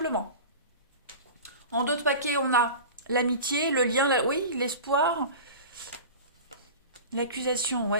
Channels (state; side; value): inverted; both; correlation -0.34